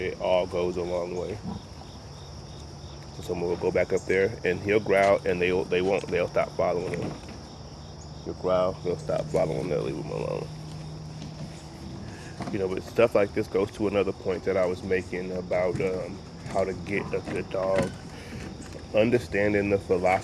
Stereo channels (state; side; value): identical; both; correlation 1.00